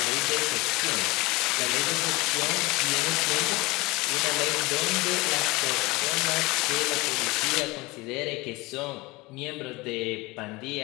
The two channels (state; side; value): quieter; right; 22.9 dB